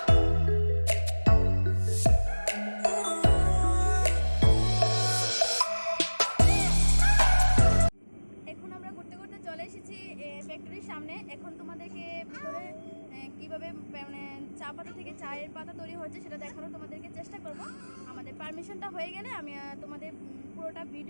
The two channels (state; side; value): inverted; both; correlation -1.00